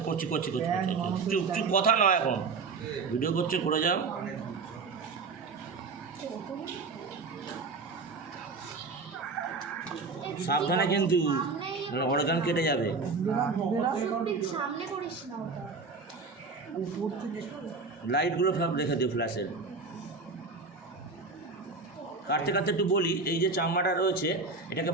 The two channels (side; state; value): left; quieter; 4.2 dB